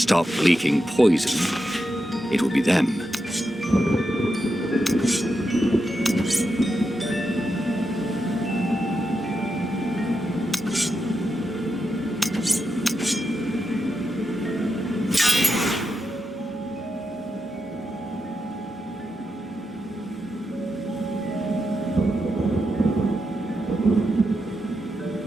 leaking poison, it would be them.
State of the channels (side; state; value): both; normal; correlation 0.86